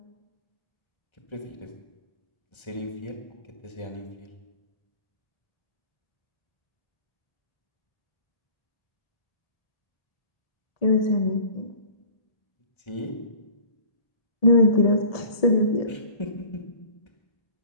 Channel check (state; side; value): late; right; 1.7 ms